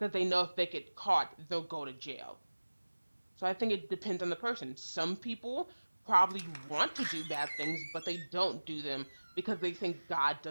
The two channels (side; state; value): both; inverted; correlation -1.00